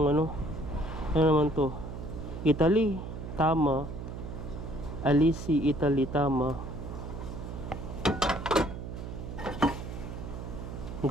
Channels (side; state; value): right; noise; hum, 8 dB below the sound